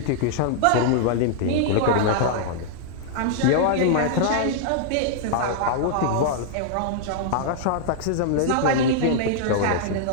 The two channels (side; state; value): both; different; correlation -0.01